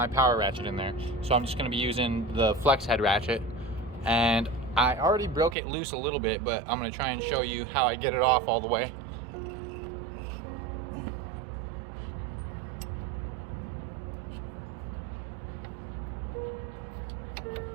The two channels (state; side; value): drops out; left; at 5.6 s